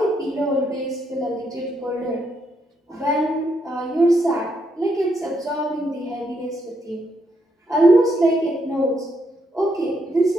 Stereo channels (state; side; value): normal; both; correlation 0.77